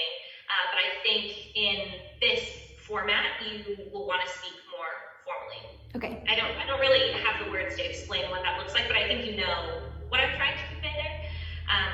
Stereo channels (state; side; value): identical; both; correlation 1.00